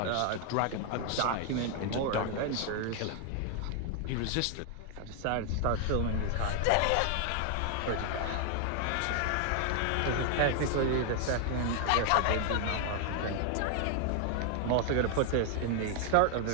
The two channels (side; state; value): both; different; correlation 0.00